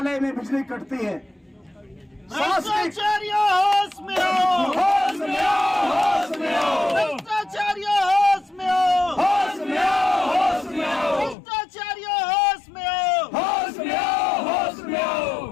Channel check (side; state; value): right; drops out; at 11.4 s